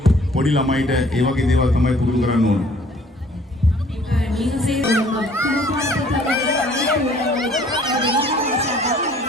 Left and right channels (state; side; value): normal; both; correlation 0.57